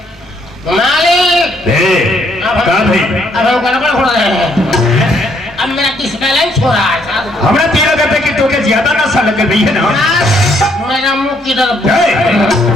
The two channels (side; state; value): both; normal; correlation 0.69